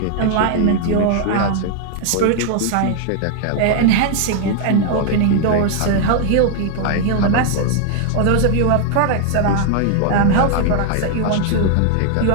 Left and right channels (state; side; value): different; both; correlation 0.00